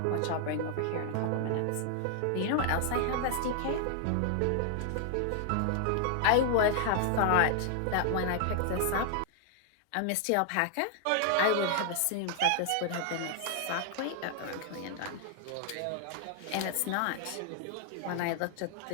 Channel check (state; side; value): different; both; correlation -0.01